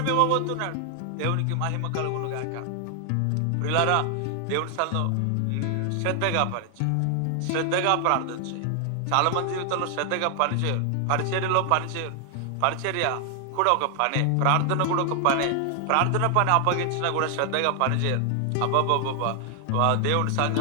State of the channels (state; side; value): different; both; correlation 0.00